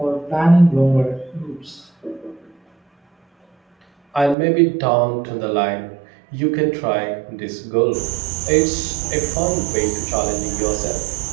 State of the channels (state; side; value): drops out; left; at 4.4 s